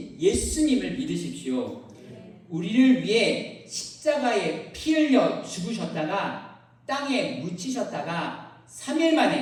예수님을 믿으십시오. 우리를 위해 십자가에 피 흘려 죽으셨다가 땅에 묻히셨다가 3일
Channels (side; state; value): both; identical; correlation 1.00